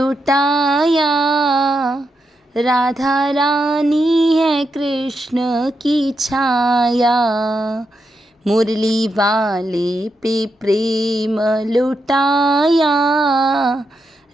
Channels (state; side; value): normal; both; correlation 0.84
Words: राधा रानी है कृष्ण की छाया। मुरली वाले पे प्रेम लुटाया,